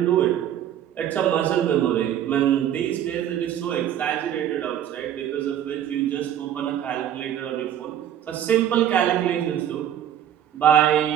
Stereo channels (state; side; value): quieter; left; 10.5 dB